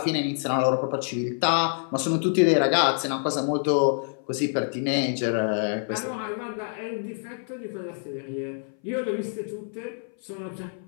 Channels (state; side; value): silent; right; 58 dB below the other